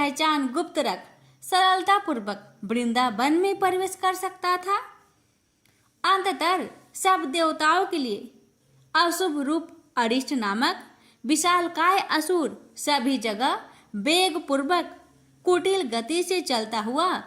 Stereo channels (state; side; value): identical; both; correlation 1.00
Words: गुप्त रख सरलता पूर्वक वृंदावन में प्रवेश कर सकता था। अंततः सब देवताओं के लिए अशुभ रूप अरिष्ट नामक विशालकाय असुर सभी जगह वेग पूर्वक कुटिल गति से चलता हुआ